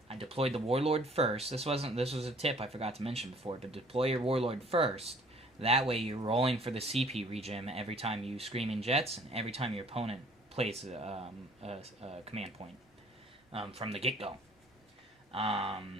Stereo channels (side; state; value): both; normal; correlation 0.55